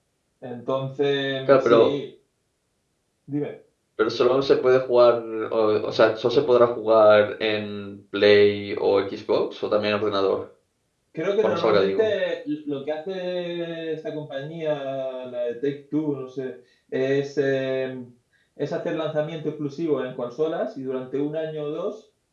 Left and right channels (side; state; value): both; identical; correlation 1.00